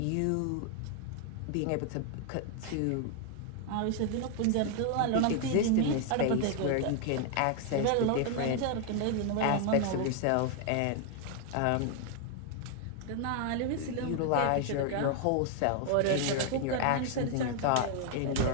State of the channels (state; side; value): different; both; correlation 0.00